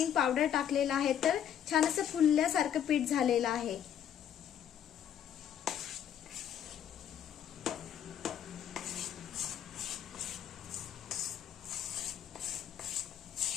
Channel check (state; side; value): quieter; right; 9.5 dB